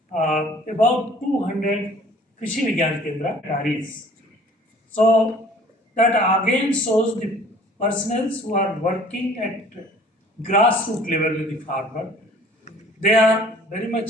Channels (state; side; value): normal; both; correlation 0.52